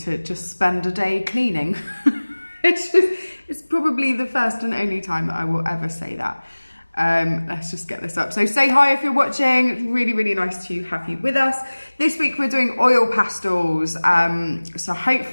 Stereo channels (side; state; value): both; inverted; correlation -1.00